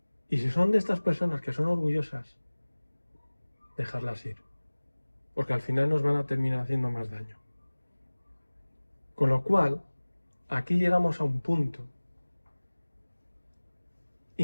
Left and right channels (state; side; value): inverted; both; correlation -1.00